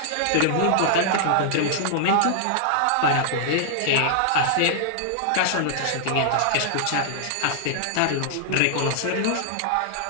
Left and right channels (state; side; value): different; both; correlation -0.01